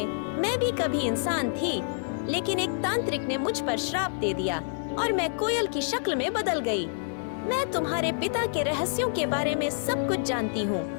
मैं भी कभी इंसान थी, लेकिन एक तांत्रिक ने मुझ पर श्राप दे दिया और मैं कोयल की शक्ल में बदल गई। मैं तुम्हारे पिता के रहस्यों के बारे में सब कुछ जानती हूँ।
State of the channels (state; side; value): silent; right; digital silence